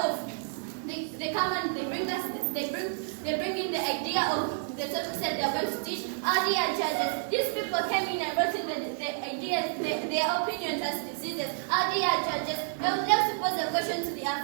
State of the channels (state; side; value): silent; left; 58 dB below the other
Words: they come and they bring in the idea of the topics that they are going to teach. Our dear judges, these people came in and brought in the ideas, their opinions as diseases. Our dear judges, I would like to pose a question to the